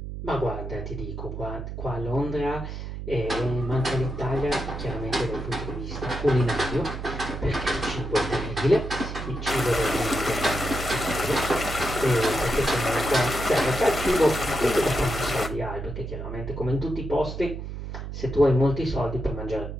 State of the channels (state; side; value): noise; right; hum, 7 dB below the sound